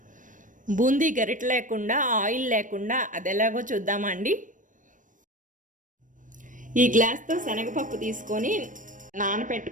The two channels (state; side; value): late; left; 0.38 ms